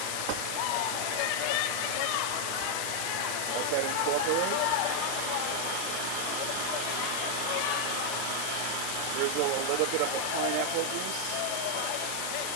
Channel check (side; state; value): both; different; correlation 0.00